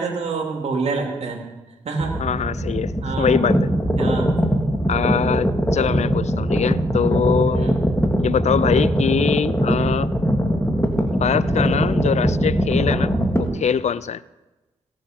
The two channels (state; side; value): normal; both; correlation 0.70